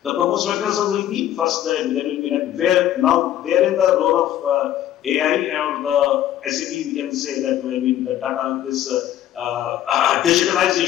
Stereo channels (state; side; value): quieter; right; 11.9 dB